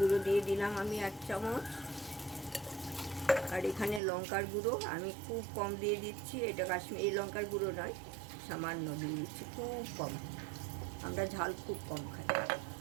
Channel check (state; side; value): drops out; left; at 4.0 s